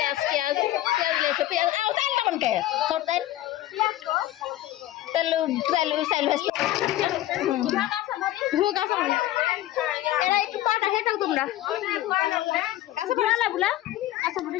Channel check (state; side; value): quieter; right; 14.7 dB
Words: পেঁয়াজ পেঁয়াজ লেছে পেঁয়াজ তেল কেমন কে তেল তেল তেল চাইল এরা একটু পাটা খেয়ে থাক তোমরা কাছে পড়ালা বুলা কাছে পড়ে